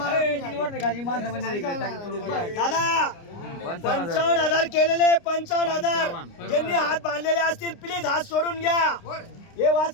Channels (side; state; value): right; late; 29 ms